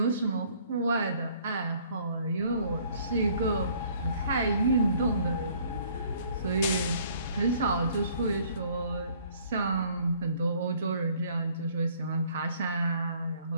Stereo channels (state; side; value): inverted; both; correlation -0.59